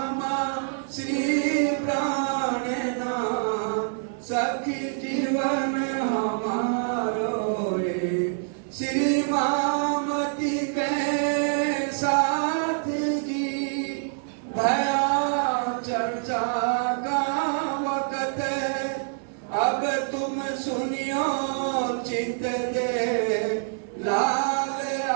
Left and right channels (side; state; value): left; silent; digital silence